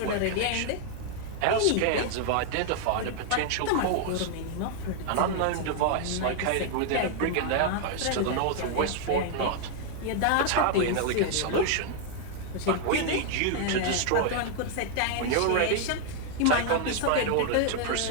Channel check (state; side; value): different; both; correlation 0.00